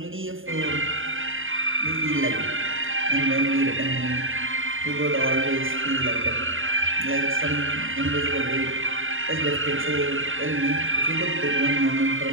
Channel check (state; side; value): late; left; 0.58 ms